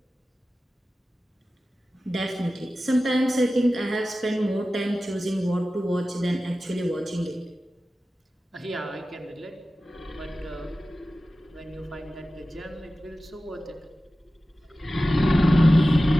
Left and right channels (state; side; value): normal; both; correlation 0.95